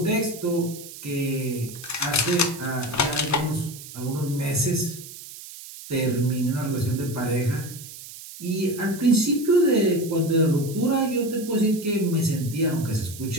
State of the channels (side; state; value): right; noise; hiss, 14 dB below the sound